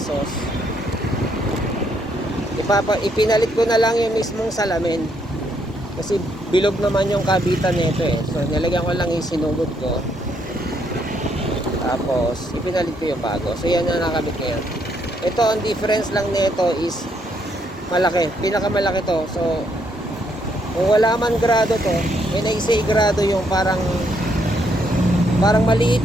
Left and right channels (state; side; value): normal; both; correlation 0.73